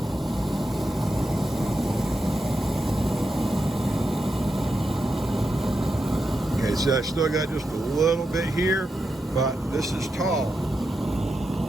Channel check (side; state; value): both; normal; correlation 0.87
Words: Okay, so I still got just a little bit here, but this is tall.